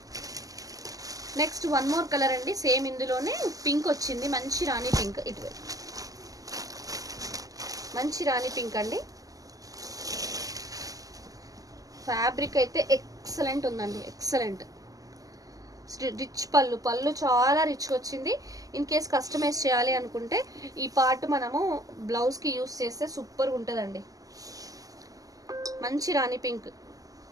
నెక్స్ట్ వన్ మోర్ కలర్ అండి, సేమ్ ఇందులోనే పింక్ వచ్చింది, మంచి రాణి పింక్. ఇటువైపు మంచి రాణి పింక్ అండి. ఫ్యాబ్రిక్ అయితే ఎక్సలెంట్ ఉందండి, ఎక్సలెంట్. రిచ్ పళ్ళు చాలా రిచ్గా వచ్చింది. ఇన్ కేస్ కస్టమైజ్ చేయాలి అనుకుంటే ఈ పార్ట్ మనము బ్లౌజ్కి యూస్ చేస్తే సూపర్గా ఉంటుందండి. మంచి రాణి పింక్,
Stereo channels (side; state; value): left; late; 0.17 ms